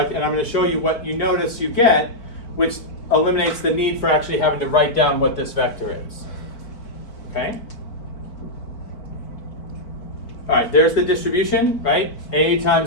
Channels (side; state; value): right; late; 4.5 ms